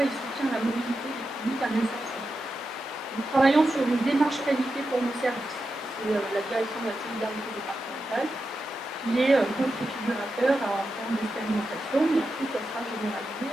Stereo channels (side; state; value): both; normal; correlation 0.89